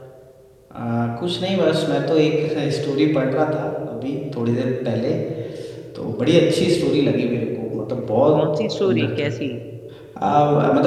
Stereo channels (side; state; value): both; identical; correlation 1.00